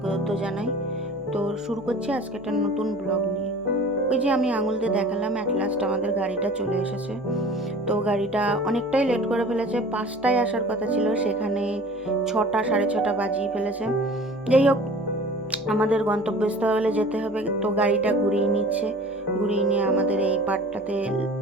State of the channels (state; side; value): normal; both; correlation 0.43